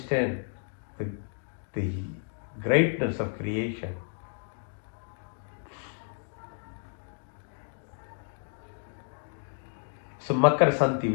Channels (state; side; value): silent; right; 57 dB below the other